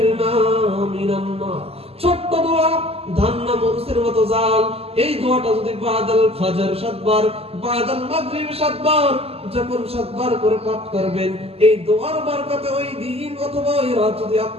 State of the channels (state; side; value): late; left; 0.29 ms